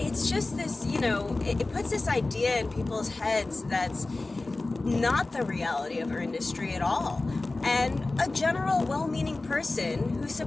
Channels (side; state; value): right; quieter; 3.2 dB